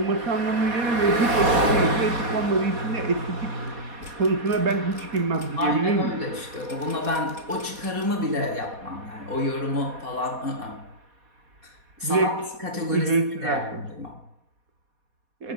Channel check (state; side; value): late; left; 4.2 ms